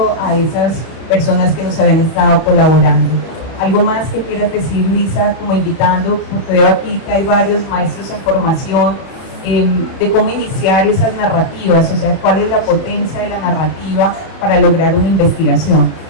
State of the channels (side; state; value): right; late; 31 ms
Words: a esas personas que nos habían estado colaborando. ¿Algo más que quieras decir, Luisa, como invitando? Porque veo aquí que hay varios maestros en formación, de cómo iniciar esas narrativas, o sea, cuál es la potencia de la narrativa para lograr una investigación.